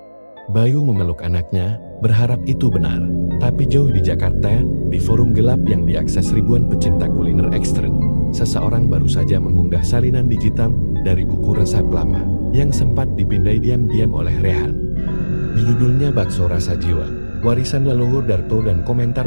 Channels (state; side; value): inverted; both; correlation -1.00